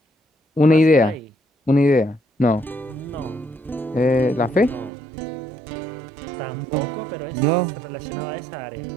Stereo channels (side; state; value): left; drops out; at 4.9 s